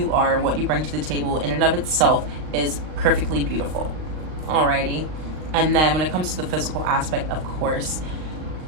are, what you bring to the table in and of itself is perfectly beautiful. Alrighty. And then when it comes to the physical aspect, of course,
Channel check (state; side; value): late; left; 39 ms